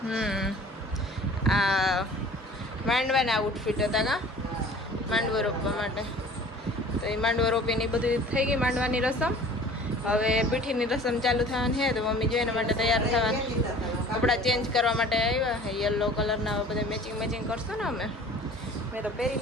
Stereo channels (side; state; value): both; normal; correlation 0.46